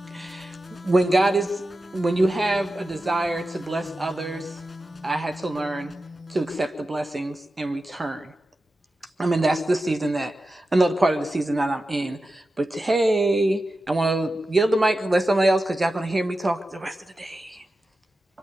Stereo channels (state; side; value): normal; both; correlation 0.92